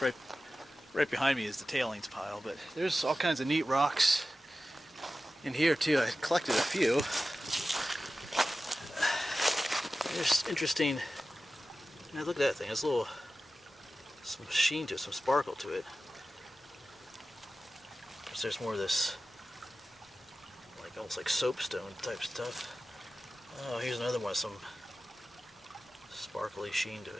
right behind me is the tailings pile, but there's all kinds of neat rocks in here too. I collected a few. There's interesting. Now look at that thing. There's some sheen to it, some sparkle to it. There's more of this, like almost like soapstone type stuff. Oh, here's another one with some sparkly sheen to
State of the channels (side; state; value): both; normal; correlation 0.94